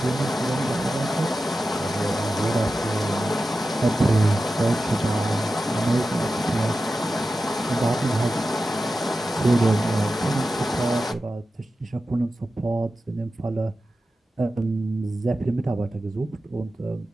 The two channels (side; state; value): both; normal; correlation 0.92